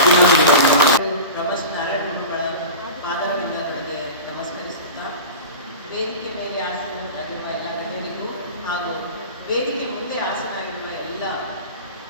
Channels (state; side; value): inverted; both; correlation -0.31